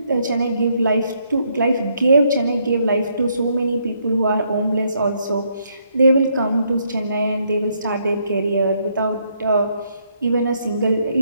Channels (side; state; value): both; inverted; correlation -0.73